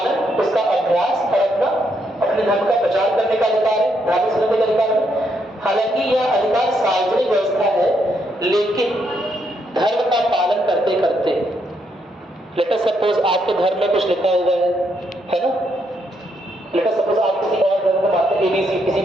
उसका अभ्यास और अपने धर्म का प्रचार करने का अधिकार है, धार्मिक स्वतंत्रता का अधिकार है। हालांकि यह अधिकार सार्वजनिक व्यवस्था है, लेकिन धर्म का पालन करते करते, लेट अस सपोज आपके धर्म में कुछ लिखा हुआ है ना, लेट अस सपोज आप किसी और धर्म को मानते हैं, ABC किसी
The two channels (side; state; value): both; normal; correlation 0.76